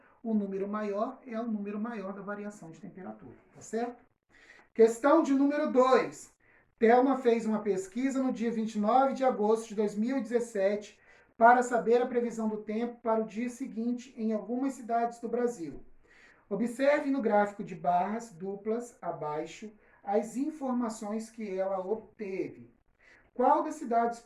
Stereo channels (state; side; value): identical; both; correlation 1.00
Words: O número maior é o número maior da variação de temperatura, tá certo? Questão de número 2. Thelma fez uma pesquisa no dia 29 de agosto de 2017 para saber a previsão do tempo para o dia seguinte em algumas cidades do Brasil. Observe no gráfico de barras duplas abaixo as informações que ela obteve. Qual das cidades